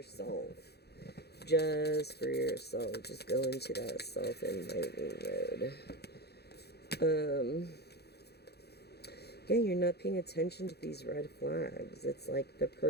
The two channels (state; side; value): late; right; 0.47 ms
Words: Just for yourself. Just go into that self-enlightening mode. Yeah, you're not paying attention to these red flags. It's like the